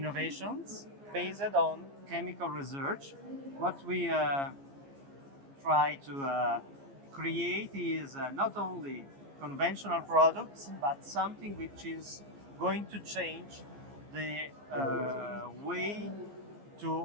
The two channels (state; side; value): late; left; 14 ms